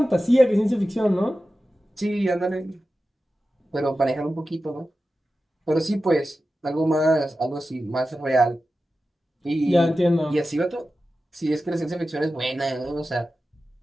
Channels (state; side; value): normal; both; correlation 0.93